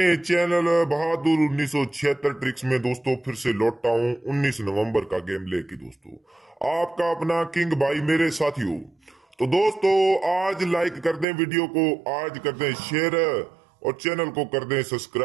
चैनल बहादुर 1976 ट्रिक्स में दोस्तों फिर से लौटा हूं 19 नवंबर का गेम लेके दोस्तों। आपका अपना किंग भाई मेरे साथियों। तो दोस्तों आज लाइक कर दें वीडियो को, आज कर दें शेयर और चैनल को कर दें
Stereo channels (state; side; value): drops out; left; at 11.2 s